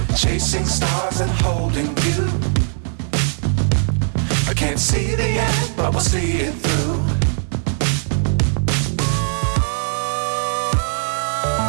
Chasing stars and holding you. I can't see the end, but we'll see it through.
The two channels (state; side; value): silent; left; digital silence